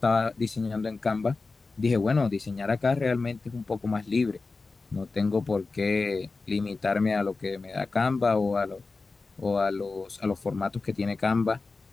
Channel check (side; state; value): right; quieter; 3.9 dB